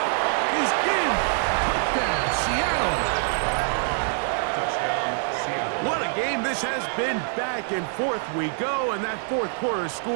is in. Touchdown, Seattle. Touchdown, Seattle. What a game this has been. Back and forth we go, and that 4th quarter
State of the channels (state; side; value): silent; left; 62 dB below the other